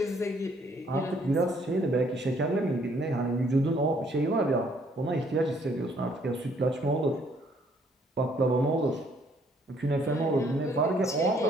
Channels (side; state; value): both; normal; correlation 0.65